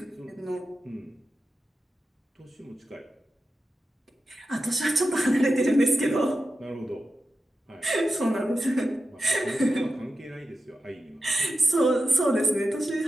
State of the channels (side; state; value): both; normal; correlation 0.91